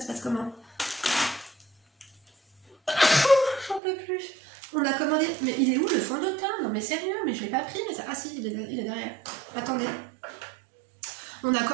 passe comment? J'en peux plus. On a commandé, mais il est où le fond de teint? Non mais sérieux, mais je l'ai pas pris, mais ça... Ah si, il est derrière. Attendez. On a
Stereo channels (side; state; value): left; drops out; at 3.8 s